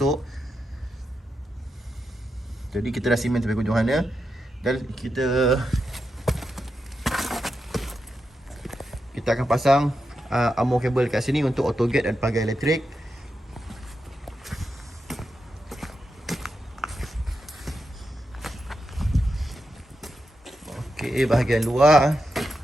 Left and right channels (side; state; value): both; normal; correlation 0.87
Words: Jadi kita dah simen sampai hujung sana. Dan kita akan pasang armor kabel kat sini untuk auto gate dan pagar elektrik. Okey, bahagian luar